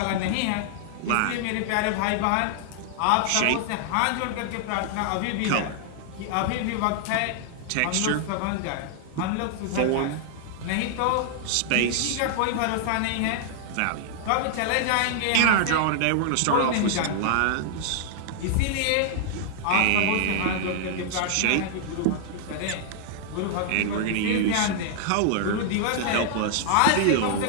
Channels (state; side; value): different; both; correlation -0.01